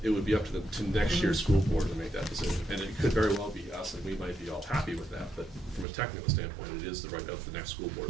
It would be up to next year's school board to make that decision. And it could very well be us, and we might be all happy with that, but from a technical standpoint, it is the right of the next school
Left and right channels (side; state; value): left; drops out; at 5.9 s